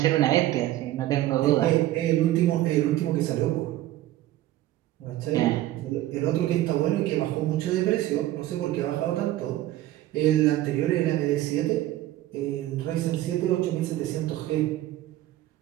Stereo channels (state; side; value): quieter; left; 14.8 dB